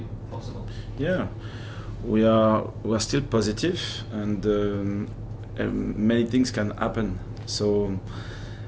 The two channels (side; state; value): both; identical; correlation 1.00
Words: possible? Yeah, we are still positive, and many things can happen. So